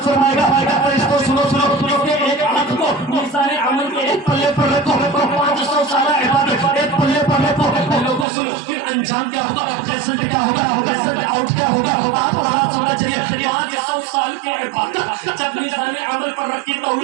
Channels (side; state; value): left; drops out; at 8.2 s